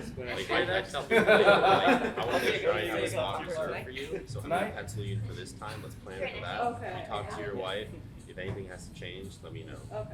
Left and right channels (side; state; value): both; identical; correlation 1.00